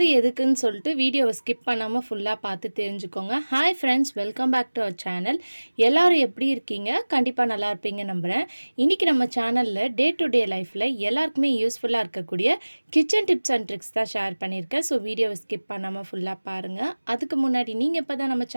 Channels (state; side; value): inverted; both; correlation -1.00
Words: எதுக்குன்னு சொல்லிட்டு வீடியோவை ஸ்கிப் பண்ணாமல் ஃபுல்லாக பார்த்து தெரிஞ்சுக்கோங்க. Hi friends, welcome back to our channel. எல்லாரும் எப்படி இருக்கீங்க? கண்டிப்பாக நல்லா இருப்பீங்க நம்புகிறேன். இன்றைக்கி நம்ம சேனலில் டே டு டே லைஃப்பில் எல்லாருக்குமே யூஸ்ஃபுல்லாக இருக்கக்கூடிய கிச்சன் டிப்ஸ் அண்ட் ட்ரிக்ஸ் தான் ஷேர் பண்ணியிருக்கேன். ஸோ வீடியோவை ஸ்கிப் பண்ணாமல் ஃபுல்லாக பாருங்கள். அதுக்கு முன்னாடி நீங்கள் இப்போ தான் நம்ம